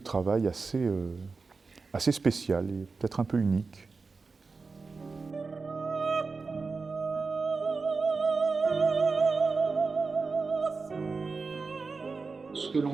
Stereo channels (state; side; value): quieter; left; 4.3 dB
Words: travail assez spécial et peut-être un peu unique. Ce que